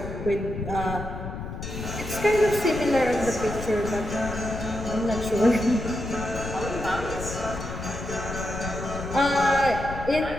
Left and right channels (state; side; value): noise; left; rumble, 8 dB below the sound